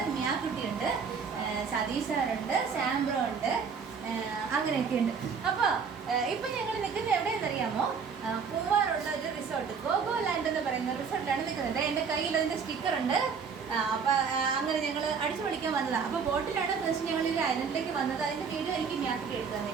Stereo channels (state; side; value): quieter; left; 5.9 dB